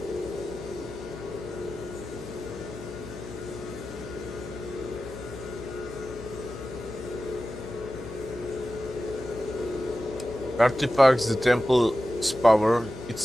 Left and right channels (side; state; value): left; noise; hum, 13 dB below the sound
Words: Artifacts, the temple's power,